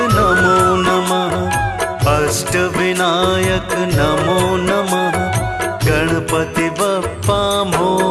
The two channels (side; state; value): both; identical; correlation 1.00